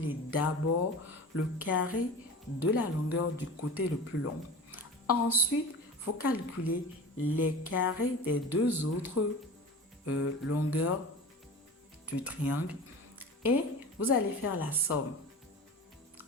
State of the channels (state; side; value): normal; both; correlation 0.34